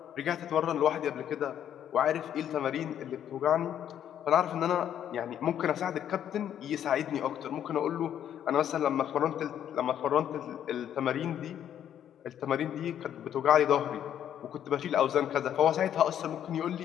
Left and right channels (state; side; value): quieter; right; 10.0 dB